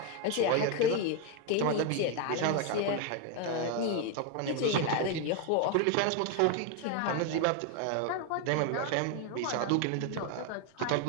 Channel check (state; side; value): different; both; correlation 0.01